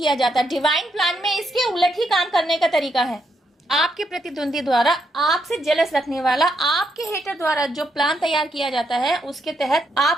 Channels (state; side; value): normal; both; correlation 0.79